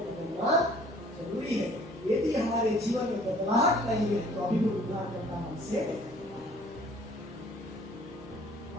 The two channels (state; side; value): normal; both; correlation 0.54